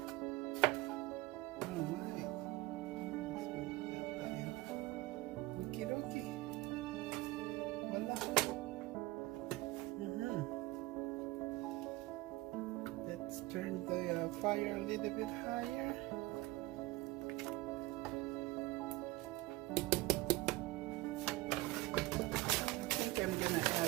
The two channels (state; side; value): quieter; left; 19.3 dB